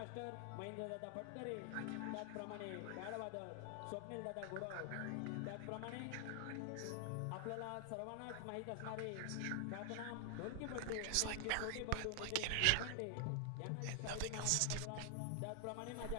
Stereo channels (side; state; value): both; different; correlation 0.00